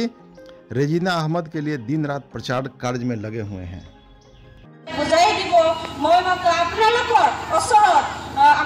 रेजीना अहमद के लिए दिन रात प्रचार कार्य में लगे हुए हैं।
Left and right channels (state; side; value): identical; both; correlation 1.00